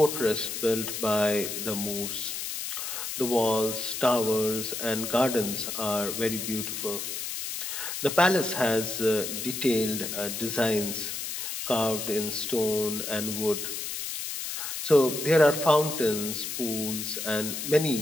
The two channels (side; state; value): left; noise; hiss, 5 dB below the sound